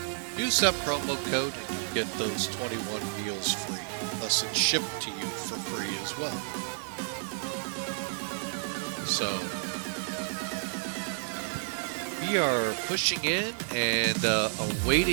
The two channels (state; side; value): silent; left; 57 dB below the other